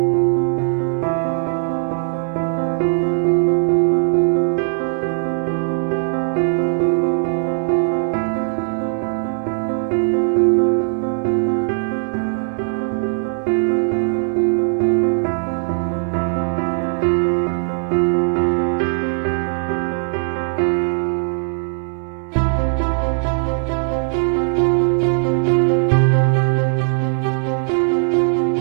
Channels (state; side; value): silent; left; 66 dB below the other